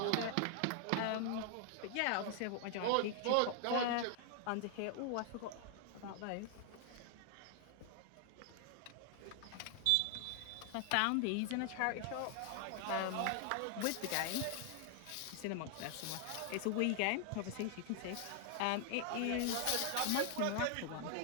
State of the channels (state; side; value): different; both; correlation 0.00